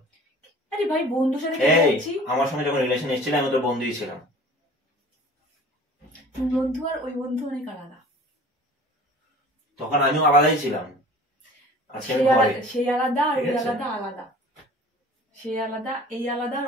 আরে ভাই, বন্ধুর সাথে যাচ্ছি। আমার সঙ্গে যখন রিলেশন এসেছিল আমি তোর বন্ধুই ছিলাম। তুই বন্ধু আর ওই বন্ধু অনেক আলাদা। তখন আমিও আলাদাই ছিলাম, আজকে আমি ঘরে। সেই আলাদা আর ওই আলাদা আলাদা। সে আলাদা, এই আলাদা, আর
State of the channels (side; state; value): both; normal; correlation 0.45